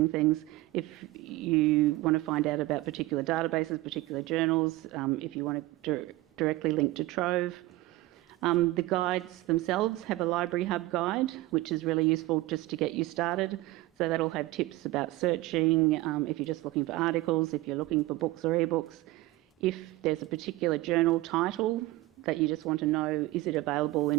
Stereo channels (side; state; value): left; quieter; 18.6 dB